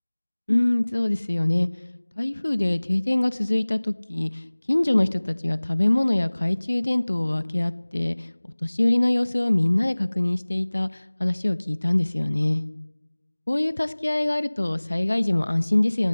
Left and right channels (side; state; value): both; inverted; correlation -1.00